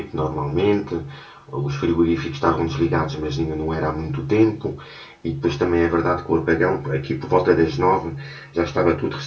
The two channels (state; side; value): identical; both; correlation 1.00